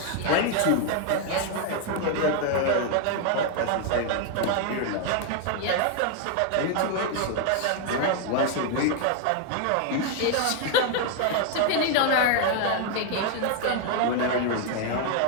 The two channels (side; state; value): both; different; correlation 0.00